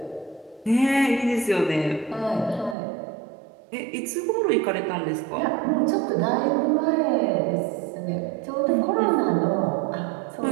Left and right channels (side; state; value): left; drops out; at 2.8 s